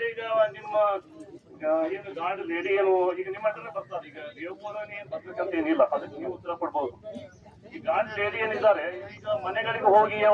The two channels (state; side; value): identical; both; correlation 1.00